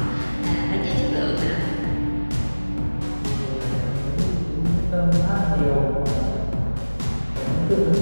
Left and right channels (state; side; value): inverted; both; correlation -1.00